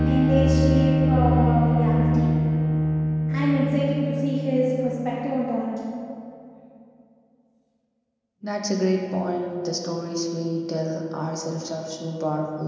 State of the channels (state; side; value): identical; both; correlation 1.00